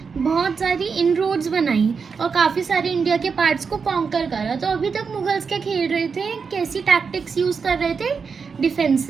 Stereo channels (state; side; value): quieter; left; 5.5 dB